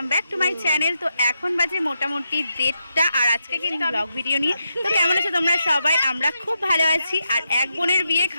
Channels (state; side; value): inverted; both; correlation -0.85